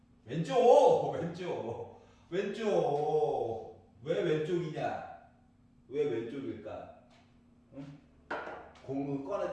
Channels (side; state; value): both; identical; correlation 1.00